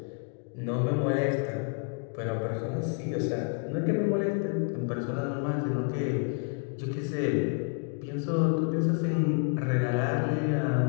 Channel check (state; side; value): quieter; right; 38.3 dB